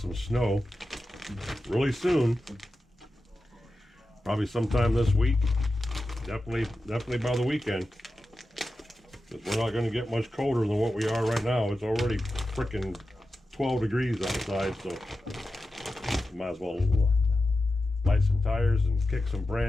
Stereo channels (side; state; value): both; normal; correlation 0.92